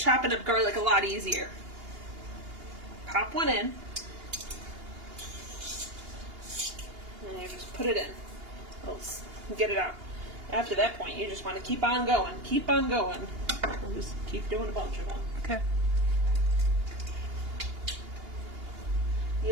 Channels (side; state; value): left; late; 2.8 ms